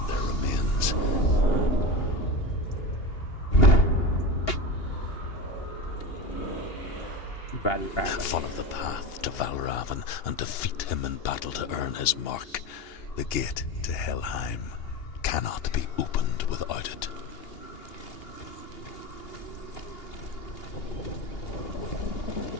their remains. Follow the path to Valravn and defeat him in battle to earn his mark. The gate to Helheim cannot be opened without it.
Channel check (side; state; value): right; late; 2.8 ms